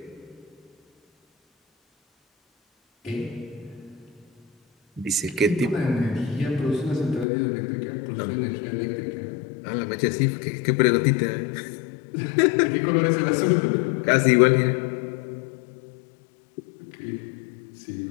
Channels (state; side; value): drops out; right; at 7.2 s